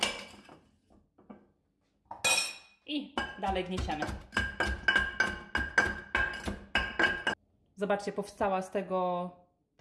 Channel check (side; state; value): both; identical; correlation 1.00